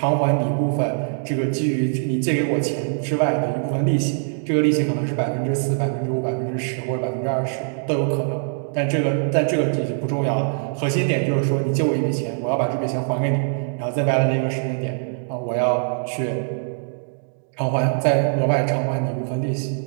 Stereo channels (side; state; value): left; silent; digital silence